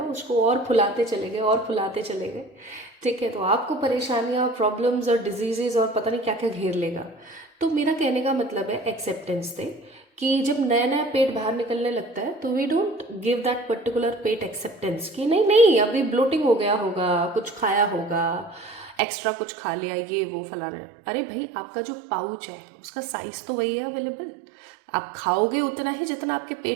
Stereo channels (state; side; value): drops out; left; at 18.9 s